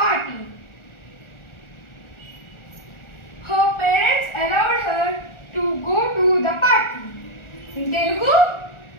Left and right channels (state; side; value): late; right; 1.4 ms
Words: Her parents allowed her to go to the party. In Telugu,